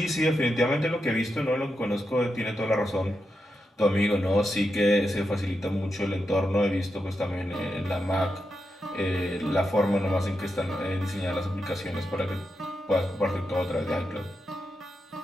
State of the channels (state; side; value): normal; both; correlation 0.87